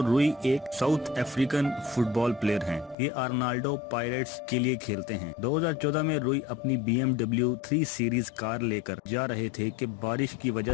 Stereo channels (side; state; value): right; drops out; at 3.0 s